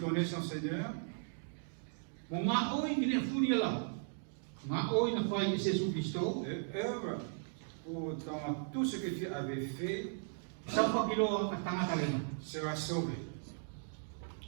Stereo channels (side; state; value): left; silent; digital silence